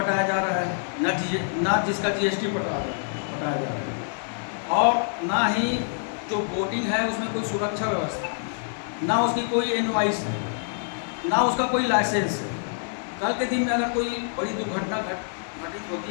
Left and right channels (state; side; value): silent; right; 61 dB below the other